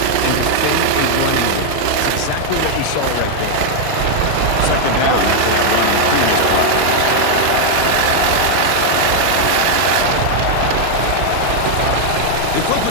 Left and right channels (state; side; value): different; both; correlation 0.00